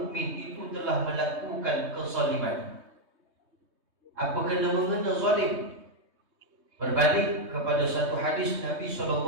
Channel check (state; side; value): late; left; 3.2 ms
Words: itu telah melakukan kezaliman. Apa kena mengena zalim? Berbalik kepada satu hadis Nabi